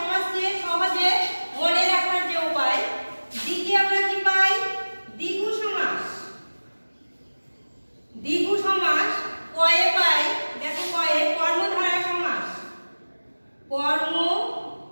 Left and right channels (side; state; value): both; inverted; correlation -1.00